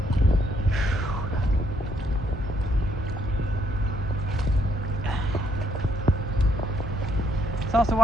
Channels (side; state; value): both; normal; correlation 0.72